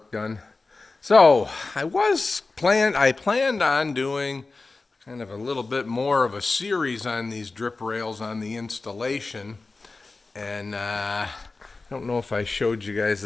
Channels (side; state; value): right; quieter; 3.7 dB